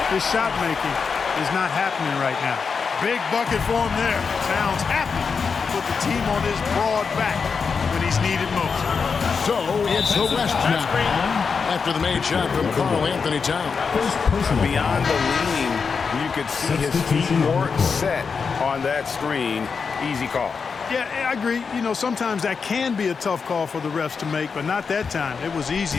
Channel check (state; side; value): quieter; right; 5.5 dB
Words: his shot making is not happening right now. Big bucket for him there. Towns happy to put the team on his broad back when he's needed most. So it's the West now after the made shot from Karl Anthony Towns. Beyond the lean, you could see his feet more set on that screen. Easy call. Yeah, I agree. You know, sometimes that can be a tough call for the refs to make, but not that time. It was